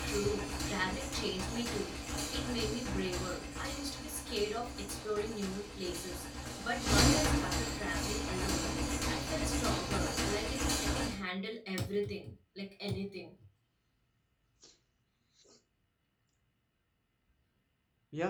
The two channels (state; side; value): identical; both; correlation 1.00